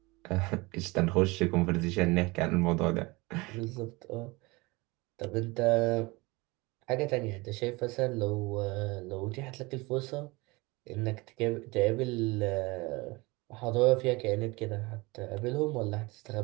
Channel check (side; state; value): left; quieter; 24.1 dB